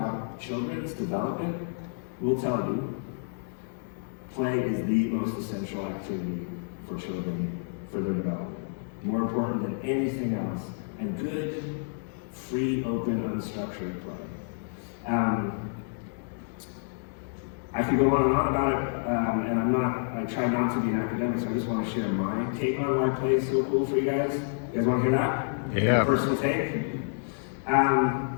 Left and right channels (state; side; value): silent; right; digital silence